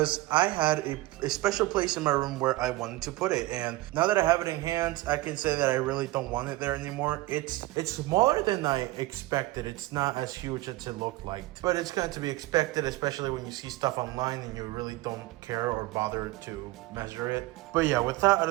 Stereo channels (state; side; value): quieter; left; 18.9 dB